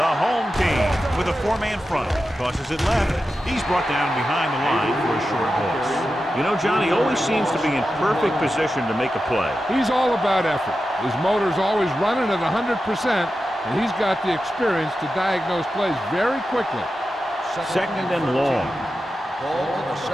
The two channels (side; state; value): both; normal; correlation 0.91